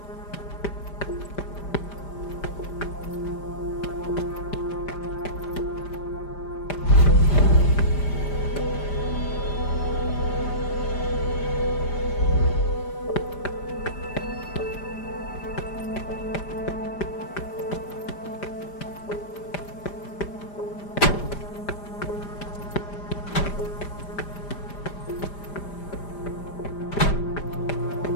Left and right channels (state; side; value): late; right; 5.0 ms